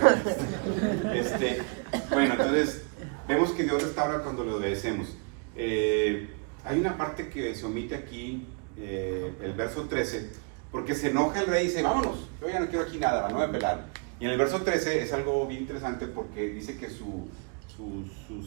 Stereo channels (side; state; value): left; quieter; 35.9 dB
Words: Bueno, entonces vemos que Dios restaura cuando le obedecemos. Hay una parte que se omite aquí, el verso 13, porque se enoja el rey y dice, vámonos, yo ya no quiero aquí nada, no voy a pelar. Y en el verso 13 es algo bien interesante porque dice que